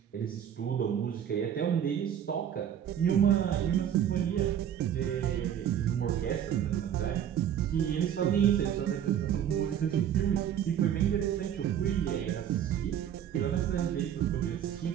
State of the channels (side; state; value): left; quieter; 9.7 dB